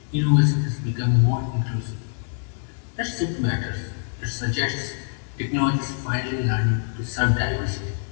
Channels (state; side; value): silent; right; 62 dB below the other